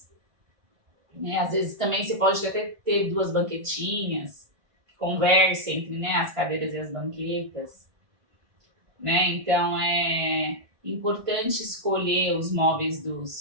né? Às vezes também você pode até ter 2 banquetinhas, conversa entre, né, as cadeiras e as banquetas, né? Então é importante escolher os móveis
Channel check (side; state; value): left; late; 1.5 ms